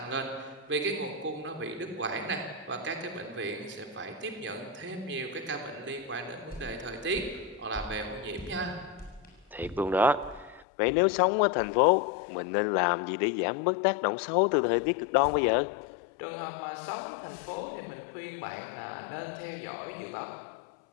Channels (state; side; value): drops out; right; at 10.7 s